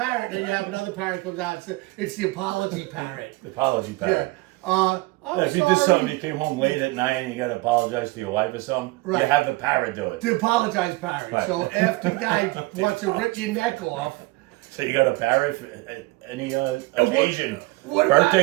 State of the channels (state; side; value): quieter; left; 22.3 dB